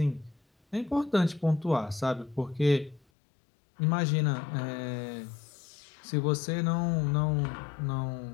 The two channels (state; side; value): drops out; right; at 3.0 s